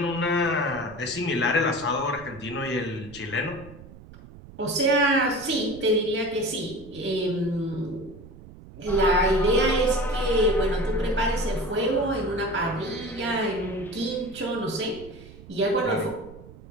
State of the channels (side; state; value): right; noise; rumble, 18 dB below the sound